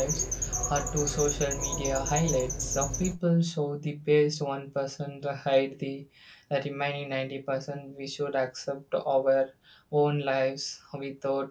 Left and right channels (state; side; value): identical; both; correlation 1.00